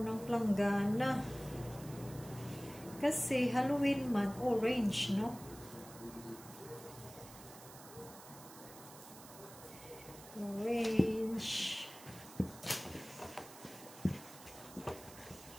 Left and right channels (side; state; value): right; noise; hiss, 17 dB below the sound